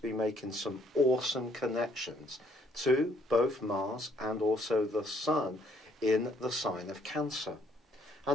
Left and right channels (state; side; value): normal; both; correlation 0.66